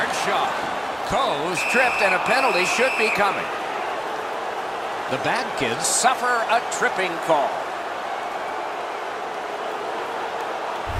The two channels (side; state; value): both; identical; correlation 1.00